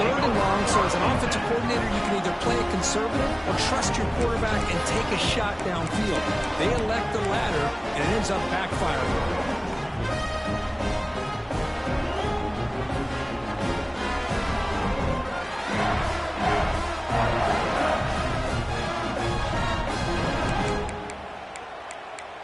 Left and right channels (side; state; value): both; identical; correlation 1.00